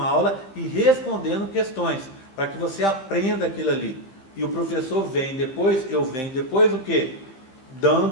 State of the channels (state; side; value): late; right; 15 ms